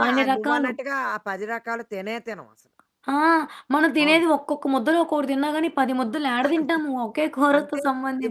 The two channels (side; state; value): both; identical; correlation 1.00